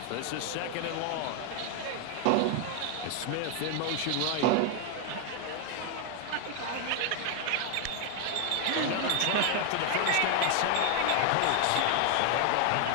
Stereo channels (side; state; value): both; different; correlation 0.01